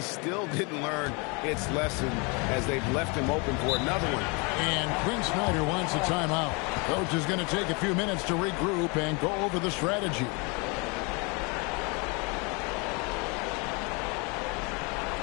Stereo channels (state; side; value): quieter; right; 30.6 dB